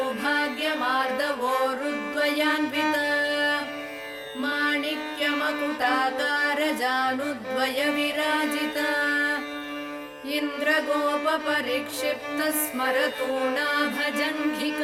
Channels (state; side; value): identical; both; correlation 1.00